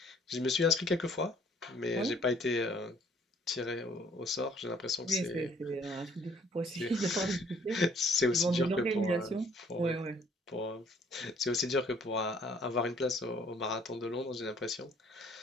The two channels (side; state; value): both; normal; correlation 0.60